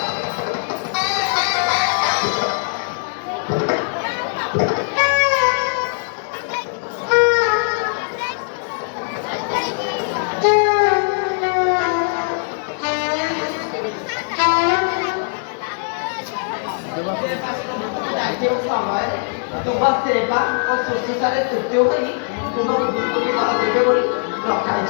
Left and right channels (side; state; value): right; silent; digital silence